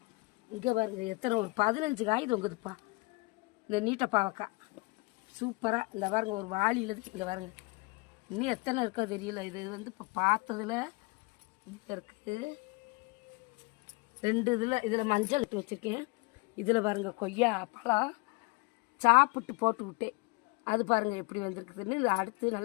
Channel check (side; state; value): right; quieter; 27.0 dB